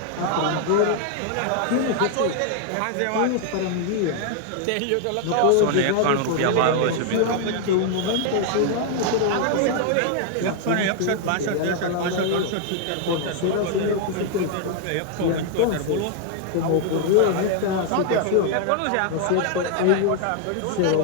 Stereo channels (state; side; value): different; both; correlation 0.00